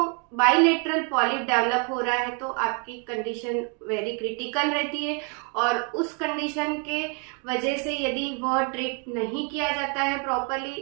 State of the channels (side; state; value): left; quieter; 37.6 dB